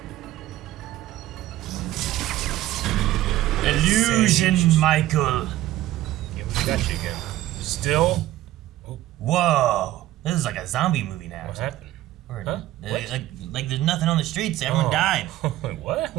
Illusion, Sage. Michael. Yeah, we got you again. Still? Whoa. This is like a zombie movie now. What happened? Or, Huh? What? Like there's nothing on the streets. Everyone died. What?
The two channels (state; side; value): quieter; left; 14.9 dB